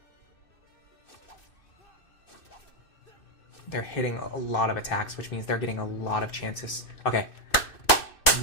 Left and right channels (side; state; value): right; late; 2.6 ms